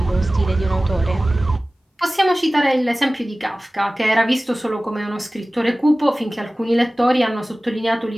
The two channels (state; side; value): normal; both; correlation 0.97